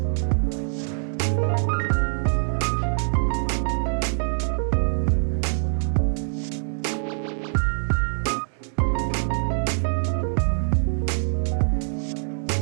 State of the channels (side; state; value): left; silent; digital silence